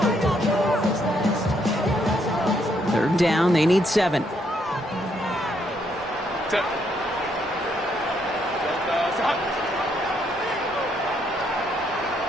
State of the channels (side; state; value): both; normal; correlation 0.73